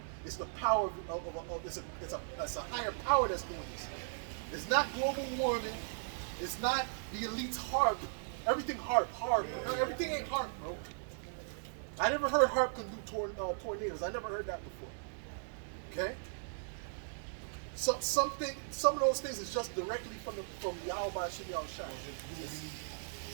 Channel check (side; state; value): left; silent; digital silence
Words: it's the power it's a higher power that's doing this. It's not global warming. It's not the elite's HARP. Everything HARP. No, everything ain't HARP, bro. I never heard HARP can do tornadoes. I never heard that before. Okay? So some of those things is just directly from Yahweh Shinal Shah.